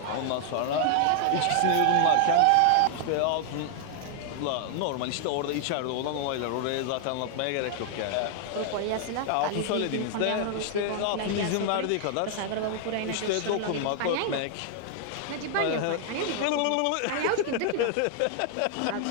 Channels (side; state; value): both; different; correlation 0.00